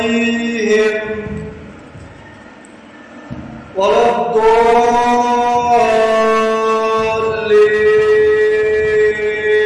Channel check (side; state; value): both; identical; correlation 1.00